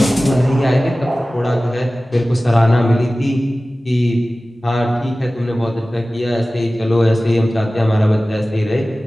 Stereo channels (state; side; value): normal; both; correlation 0.97